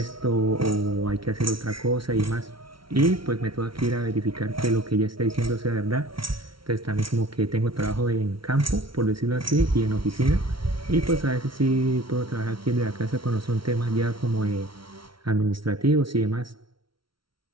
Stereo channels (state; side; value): late; left; 0.74 ms